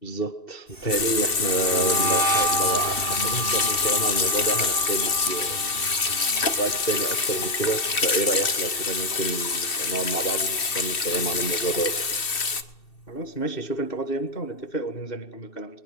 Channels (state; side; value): late; right; 2.7 ms